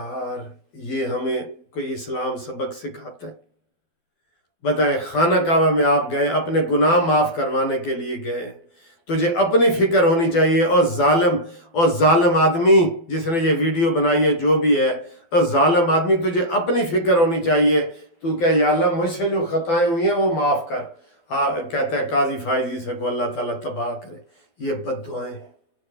ये हमें कोई इस्लाम सबक सिखाता है? बताएं, खाना काबा में आप गए, अपने गुनाह माफ़ करवाने के लिए गए, तुझे अपनी फिक्र होनी चाहिए। और जालिम आदमी जिसने ये वीडियो बनाई है, जो भी है, और जालिम आदमी तुझे अपनी फिक्र होनी चाहिए। तू कह या अल्लाह मुझसे जो खताएं हुई हैं वो माफ़ कर। हाँ, कहता है काजी फायजी से को अल्लाह ताला तबाह करे। ये बद्दुआएं हैं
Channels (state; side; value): late; right; 12 ms